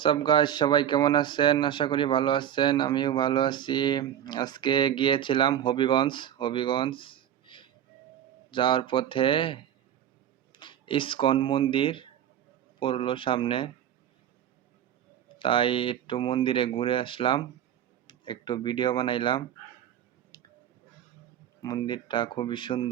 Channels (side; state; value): left; quieter; 10.4 dB